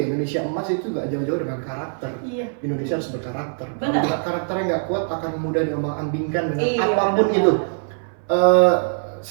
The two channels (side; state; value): left; silent; 60 dB below the other